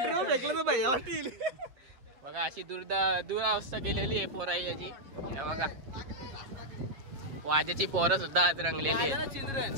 बघा, अशी दुरावस्था केलेली आहे पोराई याची बघा। वाजेची पोरं सुद्धा आज रंगलेली आहेत,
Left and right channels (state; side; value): late; left; 7.4 ms